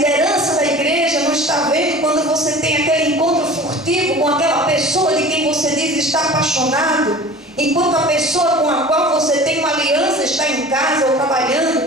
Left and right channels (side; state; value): both; normal; correlation 0.40